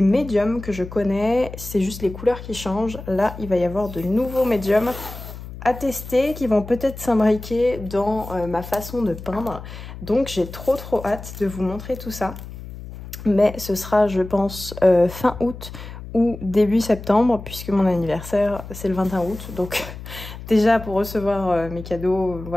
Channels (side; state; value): left; noise; hum, 12 dB below the sound